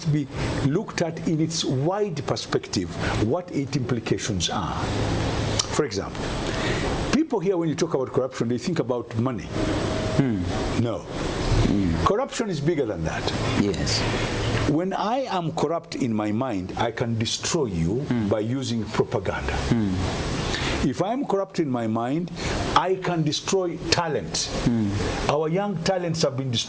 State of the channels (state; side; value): identical; both; correlation 1.00